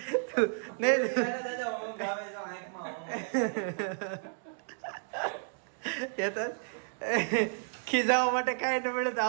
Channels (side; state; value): left; silent; digital silence